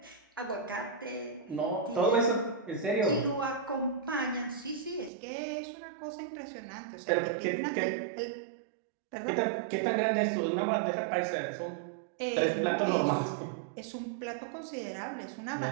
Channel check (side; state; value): left; drops out; at 5.1 s